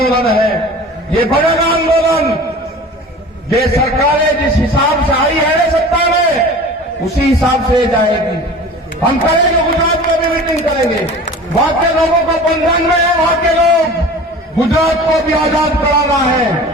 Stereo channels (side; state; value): both; normal; correlation 0.39